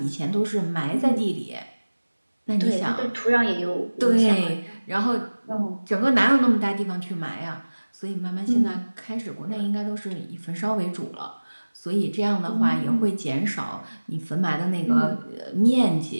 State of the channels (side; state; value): both; inverted; correlation -1.00